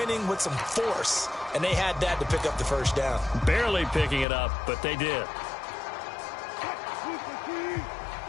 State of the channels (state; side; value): drops out; right; at 4.2 s